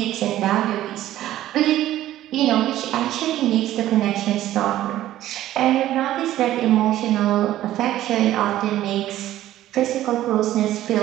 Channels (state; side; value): quieter; left; 13.7 dB